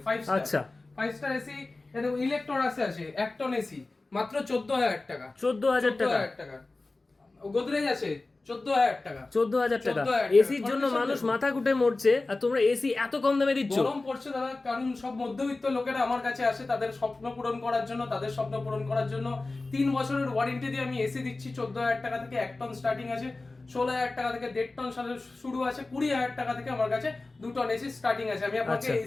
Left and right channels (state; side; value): quieter; right; 3.3 dB